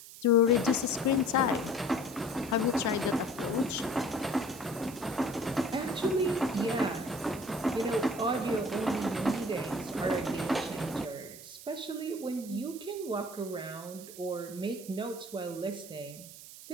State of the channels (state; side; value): noise; right; hiss, 15 dB below the sound